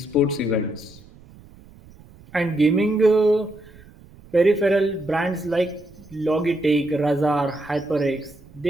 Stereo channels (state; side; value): noise; right; rumble, 23 dB below the sound